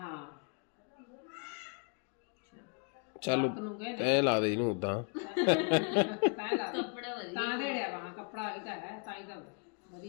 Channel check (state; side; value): quieter; right; 37.1 dB